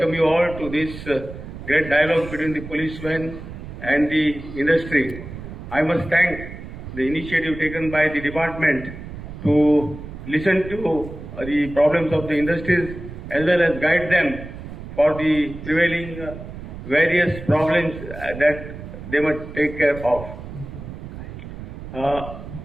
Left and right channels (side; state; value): right; noise; rumble, 11 dB below the sound